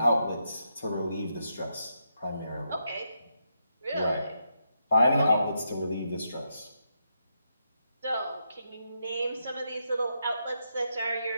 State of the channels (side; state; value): both; inverted; correlation -0.82